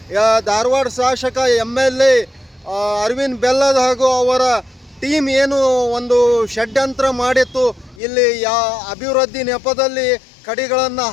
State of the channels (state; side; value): drops out; right; at 8.0 s